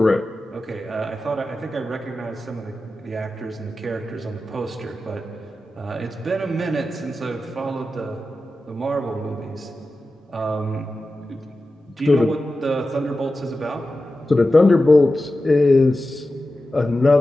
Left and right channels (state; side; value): normal; both; correlation 0.93